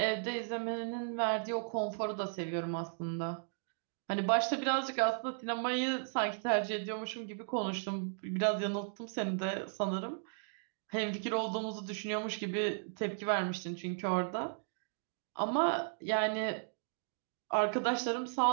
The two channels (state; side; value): silent; left; digital silence